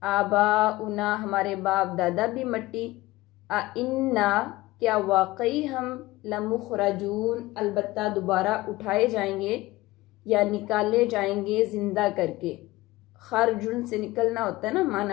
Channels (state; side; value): quieter; right; 18.9 dB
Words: آباؤنا ہمارے باپ دادا بھی مٹی، انا کیا واقعی ہم لمخرجون البتہ دوبارہ اٹھائے جائیں گے یا نکالے جائیں گے زندہ کر کے۔ خرجن سے نکلنا ہوتا ہے نا،